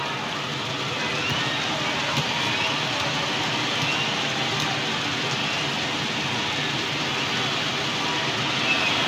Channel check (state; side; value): identical; both; correlation 1.00